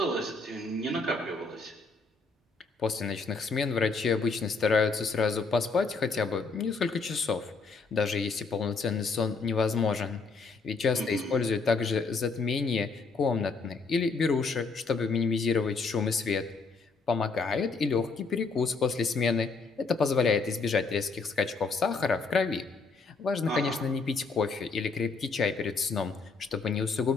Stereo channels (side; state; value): right; quieter; 4.3 dB